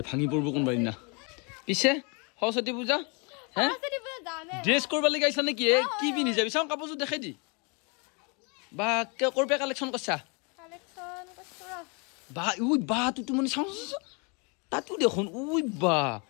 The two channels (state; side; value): quieter; right; 33.2 dB